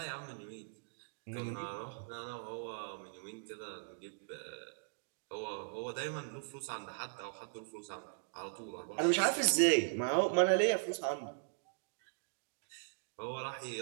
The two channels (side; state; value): left; silent; digital silence